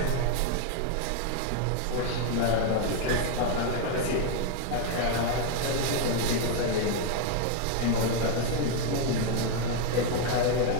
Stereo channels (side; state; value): both; different; correlation 0.00